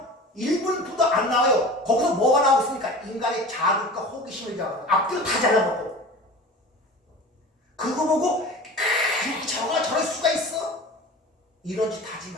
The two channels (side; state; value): both; normal; correlation 0.37